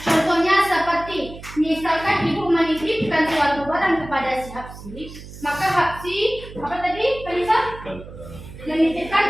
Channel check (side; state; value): right; noise; hum, 15 dB below the sound